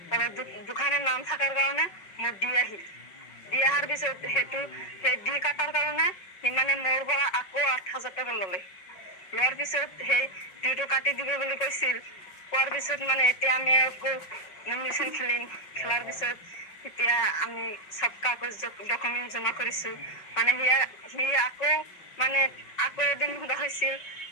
দুখানে নাম থকাৰ কাৰণে মোৰ দি আহিল। দি অহাৰ পিছত সেই দি কাটাৰ কাৰণে সি মানে মোৰ পৰা আকৌ ৮,০০০ টকা ল'লে। লোৱাৰ পিছত সেই ডিটো কাটি দিব বুলি কৈছিল। কোৱাৰ পিছত মানে এতিয়া আমি আকৌ নমিনেশ্যন খেলাৰ পিছত এতিয়া আমি চব কাগজ ডকুমেণ্ট জমা কৰিছো। মানে সি আকৌ এদিন সোধা হৈছিল,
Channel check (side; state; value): right; late; 5.4 ms